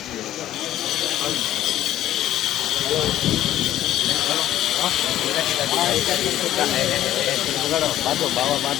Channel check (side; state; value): right; quieter; 13.0 dB